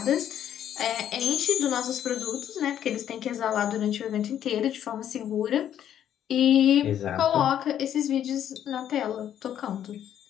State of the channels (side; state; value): right; quieter; 10.3 dB